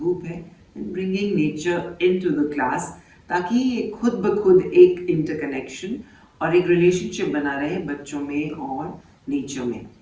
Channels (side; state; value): both; identical; correlation 1.00